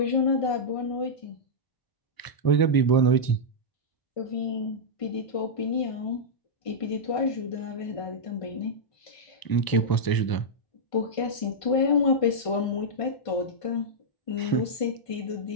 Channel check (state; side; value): late; right; 1.0 ms